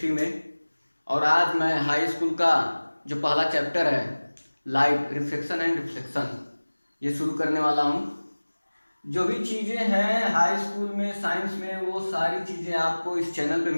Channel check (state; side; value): inverted; both; correlation -1.00